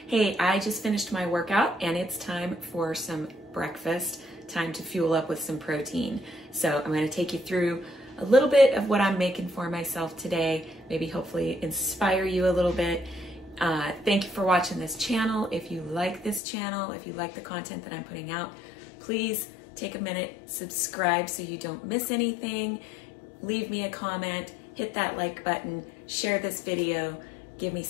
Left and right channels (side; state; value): right; drops out; at 16.4 s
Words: I just finished my workout and it's time for some breakfast, time to fuel up with some protein. So I'm going to take you through a little bit of what I'm making for myself today, maybe hopefully inspire you a little bit. Thank you for watching this channel. If you like this channel, if you like the content that I'm putting out, please take a minute, subscribe so you don't miss anything, leave me a comment, hit that like button, share this video, give me